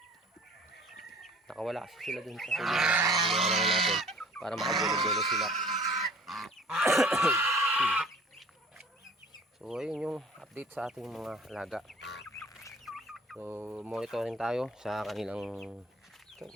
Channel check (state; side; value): normal; both; correlation 0.49